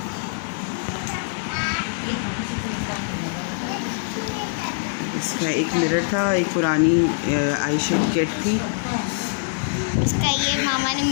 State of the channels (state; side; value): silent; right; 63 dB below the other